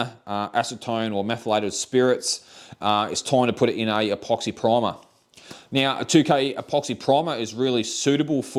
acetone or methylated spirits. It's time to put it in a epoxy primer. Now, a 2K epoxy primer is really suitable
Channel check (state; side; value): identical; both; correlation 1.00